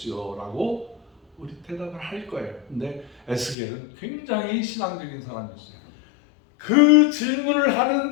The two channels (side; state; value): right; drops out; at 3.6 s